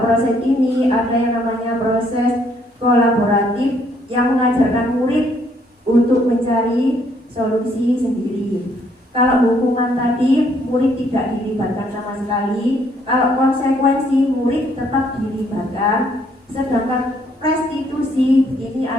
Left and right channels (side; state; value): both; normal; correlation 0.68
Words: proses ini ada yang namanya proses kolaboratif yang mengajarkan murid untuk mencari solusi sendiri. Kalau hukuman tadi murid tidak dilibatkan sama sekali, kalau konsekuensi murid tetap dilibatkan, sedangkan restitusi ini